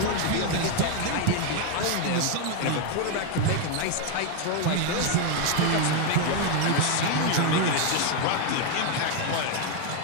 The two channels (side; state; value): both; different; correlation 0.01